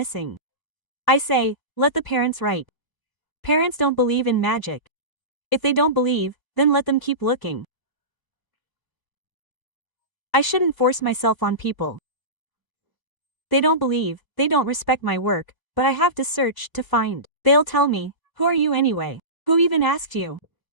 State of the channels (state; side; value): late; right; 1.1 ms